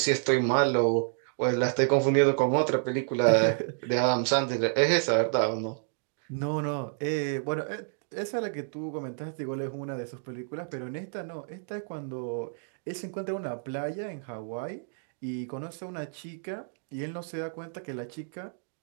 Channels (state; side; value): silent; left; digital silence